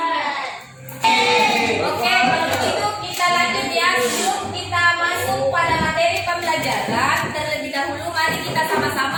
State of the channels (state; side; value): identical; both; correlation 1.00